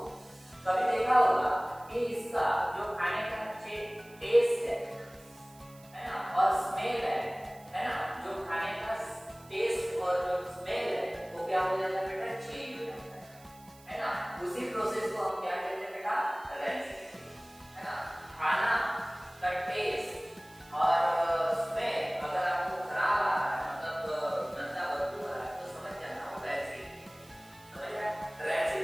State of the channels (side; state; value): right; noise; hiss, 24 dB below the sound